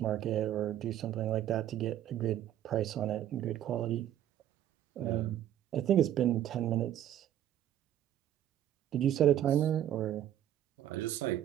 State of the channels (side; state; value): left; quieter; 11.5 dB